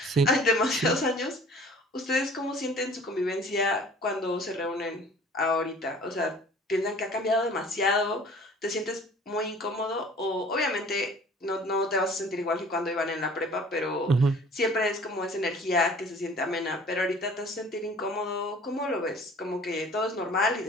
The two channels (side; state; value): both; normal; correlation 0.49